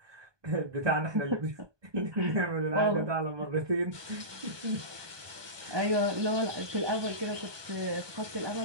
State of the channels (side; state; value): left; late; 1.2 ms